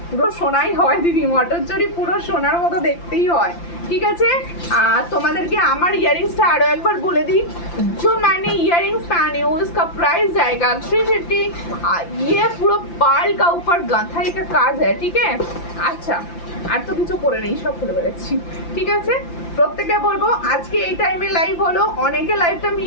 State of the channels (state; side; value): late; right; 5.8 ms